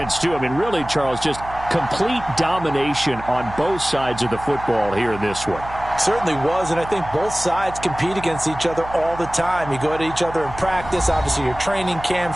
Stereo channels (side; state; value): right; noise; hum, 14 dB below the sound